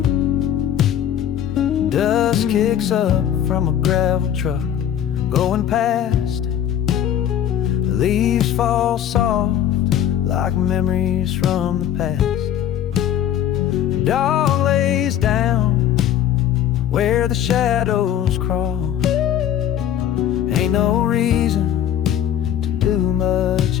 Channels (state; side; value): quieter; right; 10.3 dB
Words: Dust kicks up from a gravel truck going past. Leaves fall soft like memories from the past. Dog lays down where the shadows crawl. Ain't no reason to do